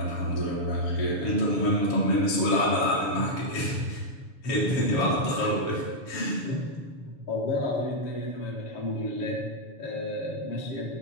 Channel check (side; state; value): right; late; 7.0 ms